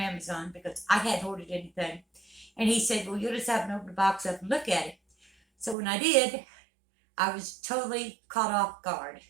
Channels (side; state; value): left; drops out; at 5.8 s